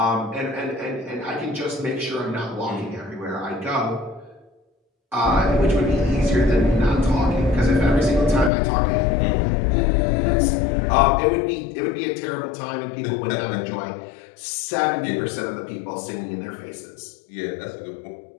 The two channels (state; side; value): drops out; right; at 8.5 s